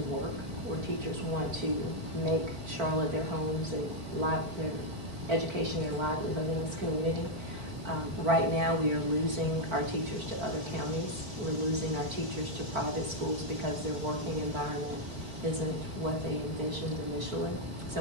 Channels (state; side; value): late; left; 4.5 ms